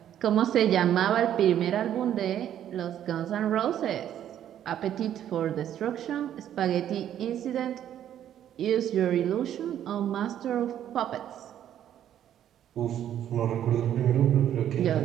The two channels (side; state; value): left; quieter; 10.7 dB